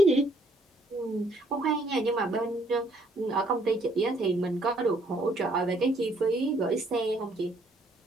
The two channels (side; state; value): both; normal; correlation 0.66